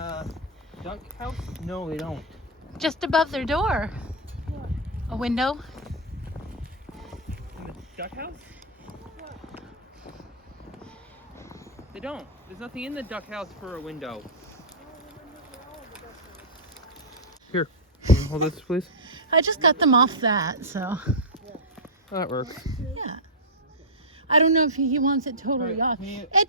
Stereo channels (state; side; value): normal; both; correlation -0.10